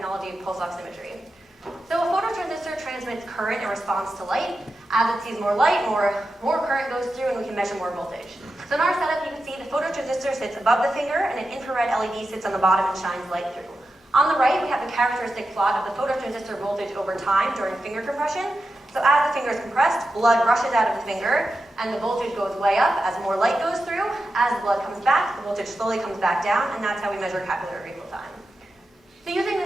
of pulse oximetry. So a phototransistor transmits current in response to light. As it sees more light, more current goes through, and we can measure more voltage. So in our setup, you can see the phototransistor sits above the finger, and an infrared LED sits on the bottom and shines light through. On the right, we have the characteristic plot of the phototransistor voltage over time during finger compression. So as the finger is compressed, blood rushes out of the finger, and the voltage goes way up as more light goes through. As the blood comes back, the voltage slowly comes back down, and that's how we measure capillary refill time. So using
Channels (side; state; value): both; normal; correlation 0.90